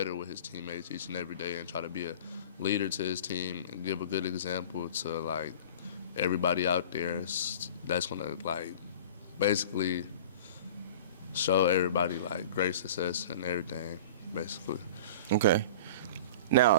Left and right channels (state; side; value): inverted; both; correlation -0.39